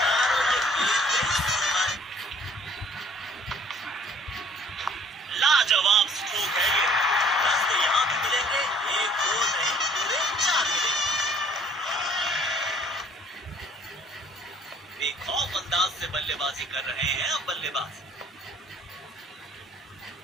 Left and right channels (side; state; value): both; normal; correlation 0.55